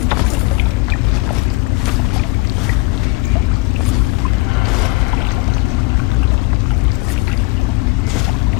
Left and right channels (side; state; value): right; quieter; 23.2 dB